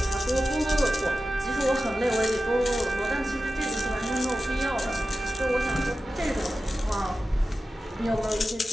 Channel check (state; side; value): normal; both; correlation 0.94